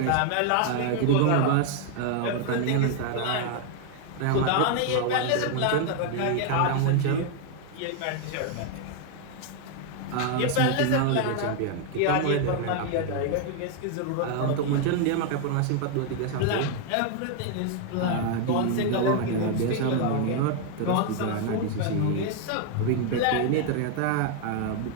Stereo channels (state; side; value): different; both; correlation 0.00